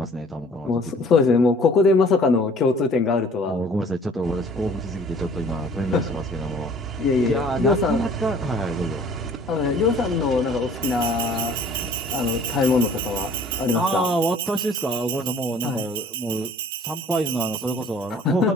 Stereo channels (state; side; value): normal; both; correlation 0.52